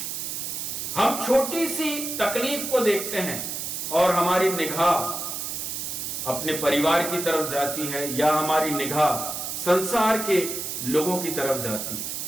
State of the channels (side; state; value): right; noise; hiss, 4 dB below the sound